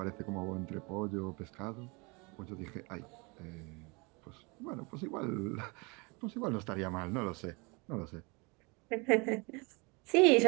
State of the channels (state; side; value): quieter; left; 28.8 dB